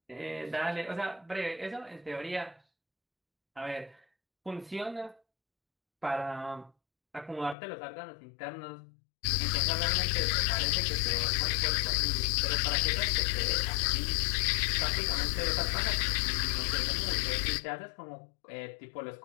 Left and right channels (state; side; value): drops out; right; at 7.6 s